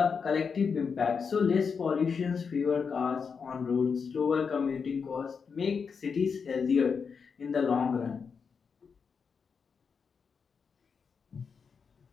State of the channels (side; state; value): right; quieter; 5.8 dB